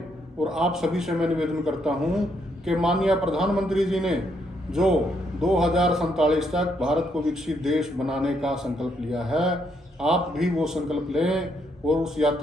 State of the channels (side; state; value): both; normal; correlation 0.75